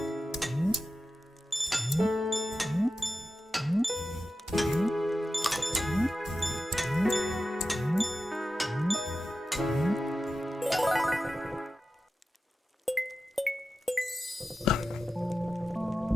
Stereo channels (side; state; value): both; normal; correlation 0.92